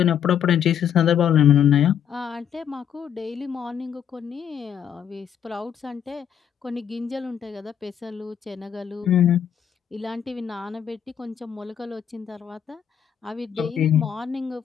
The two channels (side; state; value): right; quieter; 8.8 dB